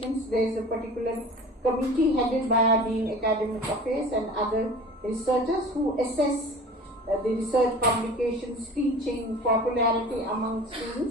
There is a particular committee headed by our Dean Academic Affairs and other researchers who assess the research publications, teaching, popularity among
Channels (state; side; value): normal; both; correlation 0.40